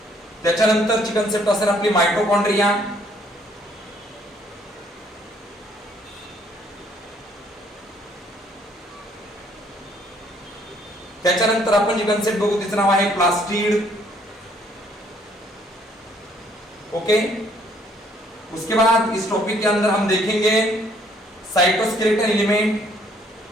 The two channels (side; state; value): both; normal; correlation 0.64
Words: त्याच्यानंतरची कन्सेप्ट असेल आपली मायटोकॉन्ड्रिया. त्याच्यानंतर आपण जी कन्सेप्ट बघू तिचं नाव आहे प्लास्टिड, ओके. उसके बाद इस टॉपिक के अंदर हम देखेंगे साइटोस्केलेटन एलिमेंट.